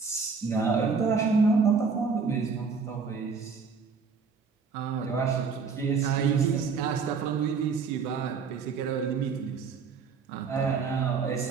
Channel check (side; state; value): left; quieter; 5.3 dB